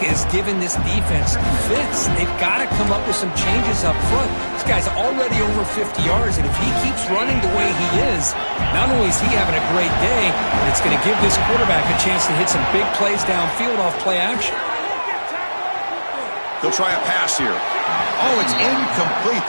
giving this defense fits. They've got to come up with some changes up front. This guy's already over 50 yards, and if he keeps running the way he is, not only is he having a great day, but it's going to give this quarterback a chance to hit some big plays downfield off play action. They'll try a pass here. Oh, it's incomplete.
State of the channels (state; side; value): inverted; both; correlation -1.00